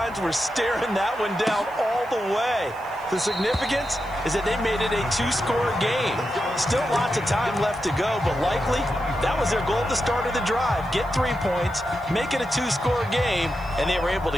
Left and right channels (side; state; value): left; noise; hiss, 27 dB below the sound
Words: were staring that one down all the way. The significance is that they made it a 2-score game. Still lots of time left to go, but likely that was their goal at the start of the drive. Get 3 points, make it a 2-score game, and they were able to